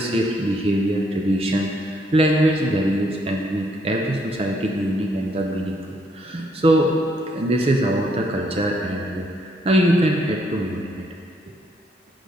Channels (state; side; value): normal; both; correlation 0.71